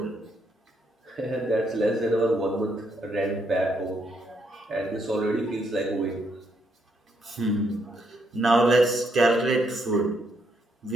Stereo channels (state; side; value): normal; both; correlation 0.75